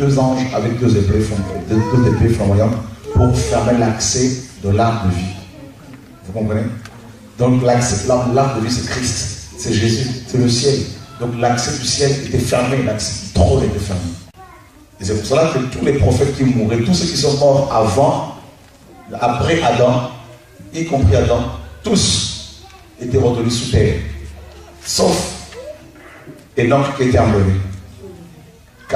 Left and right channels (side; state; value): both; identical; correlation 1.00